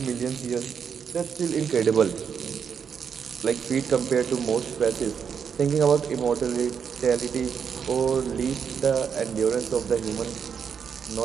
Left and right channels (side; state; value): left; quieter; 6.9 dB